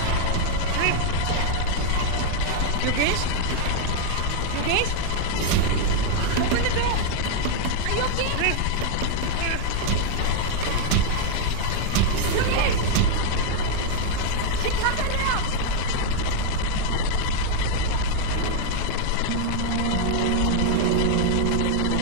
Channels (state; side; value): different; both; correlation 0.00